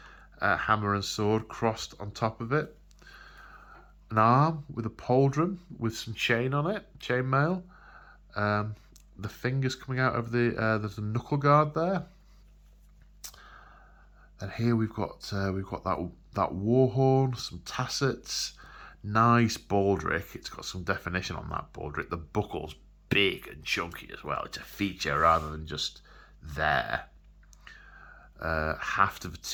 a hammer and sword crossed on top of it, an arm with a pauldron with some chain on it, chainmail. The fingers coming out of there's a knuckle guard there. And here we've got that war horn, some tassets, nice baldric. It's got some definition on that baldric. The buckle's big and chunky as well. It's a feature rather than just there. Haft of a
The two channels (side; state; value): both; identical; correlation 1.00